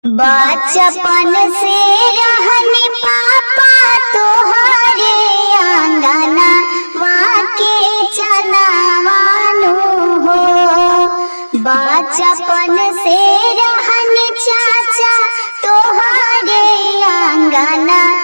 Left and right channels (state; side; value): inverted; both; correlation -1.00